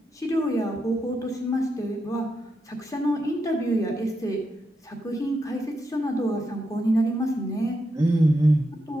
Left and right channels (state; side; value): normal; both; correlation 0.84